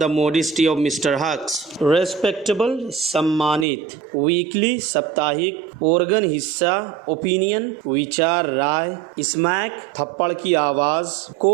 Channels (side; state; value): left; drops out; at 3.7 s